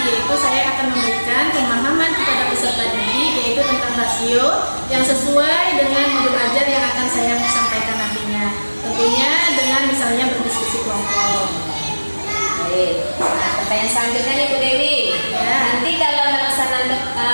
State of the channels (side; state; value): both; inverted; correlation -1.00